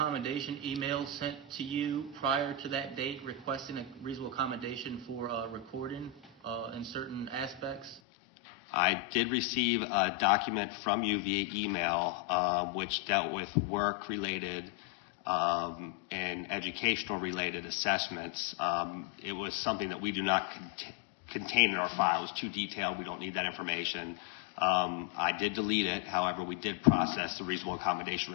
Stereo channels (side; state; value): right; drops out; at 8.0 s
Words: email sent to you prior to that date requesting a reasonable accommodation for recording in certain aspects? I did receive a document from you via email which dealt with work-related and educational-related assessments. It was something that we do not contain in our file. It was too detailed. We don't need that information. I did delete it. However, we did process the reasonable accommodation